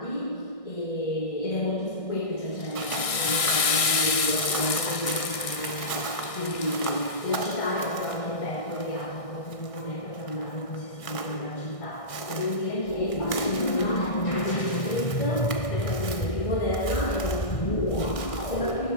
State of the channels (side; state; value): right; late; 1.6 ms